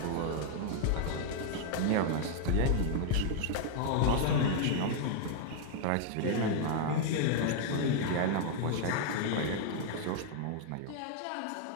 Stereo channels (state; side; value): different; both; correlation 0.00